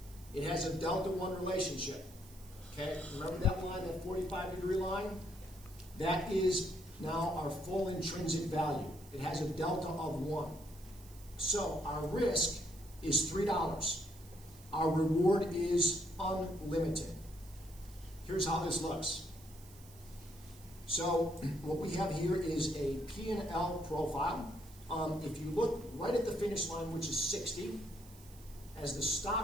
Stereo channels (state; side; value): noise; right; hiss, 22 dB below the sound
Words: It has a delta 1 relationship. Okay, remember that line, that 45-degree line? That is now our full intrinsic value. It has a delta of 1. So our risk is $3. Our reward is unlimited. Here's how this looks. So what we have here is a P&L profile. If you look right at the finish line, which is 60, as the